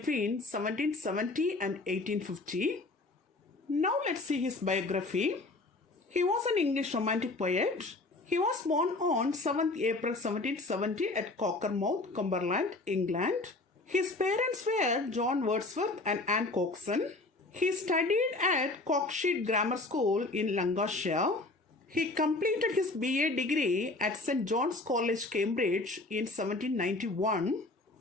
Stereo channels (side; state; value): right; quieter; 3.1 dB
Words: 1770 and 1850. Now let's see his biography. He was an English romantic poet. He was born on 7th April 1770 at Cockermouth, Cumberland, England. His parents were John Wordsworth and Anne Coxon. He studied at Cockshede Grammar School in Lancashire. He completed his BA degree at St. John's College, Cambridge in 1791.